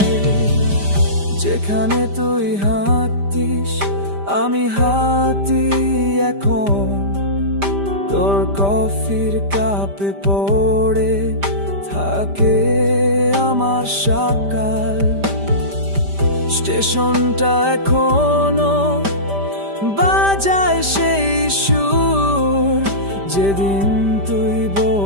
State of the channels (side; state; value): left; late; 5.0 ms